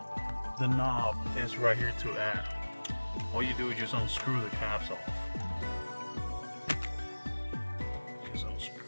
the knob is right here to add. All you do is just unscrew the caps off. Just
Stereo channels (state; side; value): inverted; both; correlation -1.00